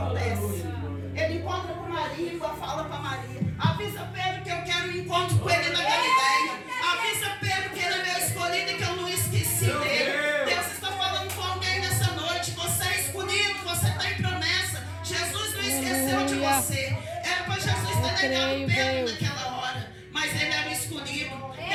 Ele encontra com Maria e fala para Maria: avisa Pedro que eu quero um encontro com ele na Galileia. Avisa Pedro que ele é meu escolhido e que eu não esqueci dele. Deus está falando com alguém nessa noite. Você é escolhido, você tem promessa. Jesus não esqueceu de você. Era para Jesus ter negado Pedro naquela hora, mas ele era o escolhido.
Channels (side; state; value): both; identical; correlation 1.00